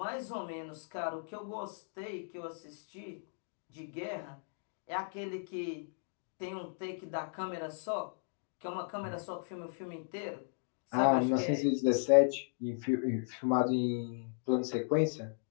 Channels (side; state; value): right; silent; digital silence